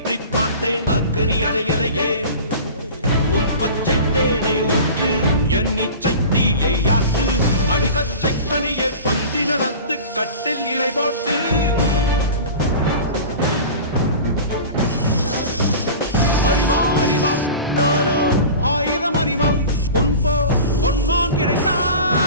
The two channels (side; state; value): both; inverted; correlation -0.36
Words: பார்த்தேன் அக்கனி அணையலையே உன் பச்சை தேனை ஊற்று என் இச்சை தீயை யாற்று அடிகச்சை கனியை பந்தி நடத்து கட்டில் இலை போட்டு அறிவா அறிவா நானோ ஆயிரம் அறிவா உன் போ பொன்மான்